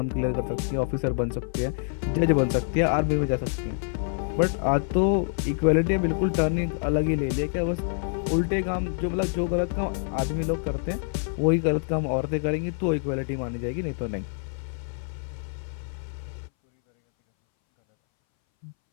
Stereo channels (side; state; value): right; silent; 61 dB below the other